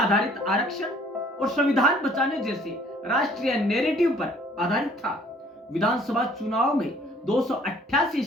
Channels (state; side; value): normal; both; correlation 0.58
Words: आरक्षण और संविधान बचाने जैसे राष्ट्रीय नैरेटिव पर आधारित था। विधानसभा चुनाव में 288